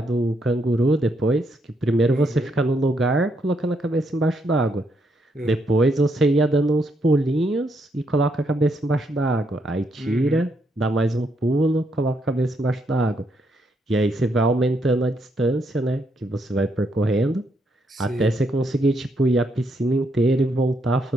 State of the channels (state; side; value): normal; both; correlation 0.76